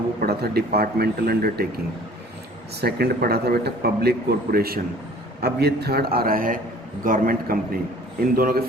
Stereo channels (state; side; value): normal; both; correlation 0.50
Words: पढ़ा था डिपार्टमेंटल अंडरटेकिंग। सेकंड पढ़ा था बेटा पब्लिक कॉरपोरेशन। अब ये थर्ड आ रहा है गवर्नमेंट कंपनी। इन दोनों के